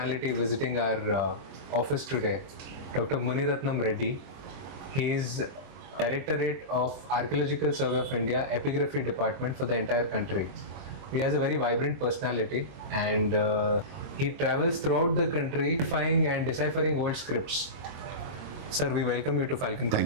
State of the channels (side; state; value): left; late; 22 ms